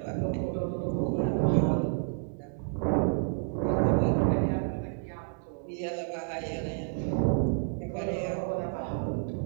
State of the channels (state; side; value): silent; left; 58 dB below the other